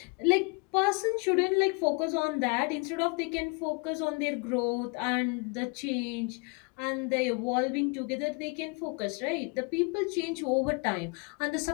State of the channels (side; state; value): right; quieter; 32.7 dB